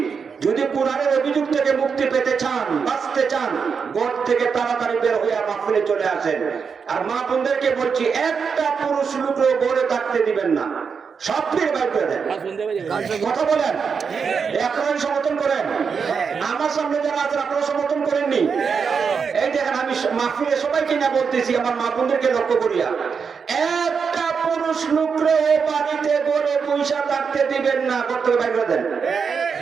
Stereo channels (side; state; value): left; quieter; 5.9 dB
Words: যদি কোরআনের অভিযোগ থেকে মুক্তি পেতে চান, বাঁচতে চান, ঘর থেকে তাড়াতাড়ি বের হয়ে মাহফিলে চলে আসেন। আর মা বোনদেরকে বলছি, একটা পুরুষ লোকও ঘরে থাকতে দিবেন না, সব ফিরে বাইর করে দেন। কথা বলেন, আপনারা সমর্থন করেন? আমার সামনে যারা আছেন আপনারা সমর্থন করেননি? এই দেখেন, আমি মাহফিলে সবাইকে না বলতেছি, আমার মা বোনদেরকে লক্ষ্য করিয়া, একটা পুরুষ লোকরে বাড়িতে ঘরে পয়সা থাকতে দিবেন না, করতে বাইর করে দেন।